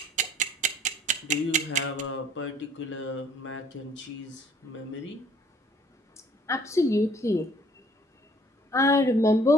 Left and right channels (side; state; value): both; normal; correlation 0.59